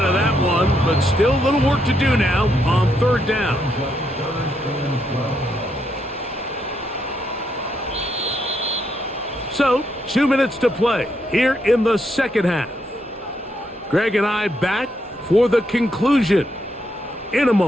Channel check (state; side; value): normal; both; correlation 0.78